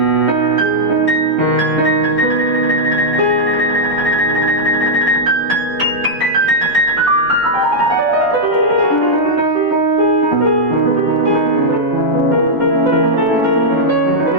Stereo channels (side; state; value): both; normal; correlation -0.04